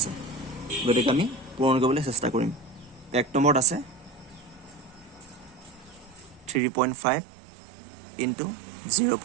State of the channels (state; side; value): drops out; left; at 6.6 s